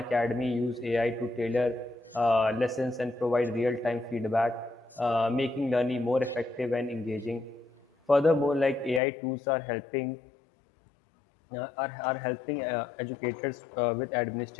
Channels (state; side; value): drops out; right; at 9.0 s